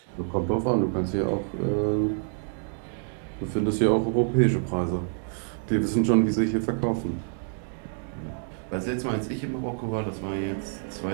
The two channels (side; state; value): left; silent; digital silence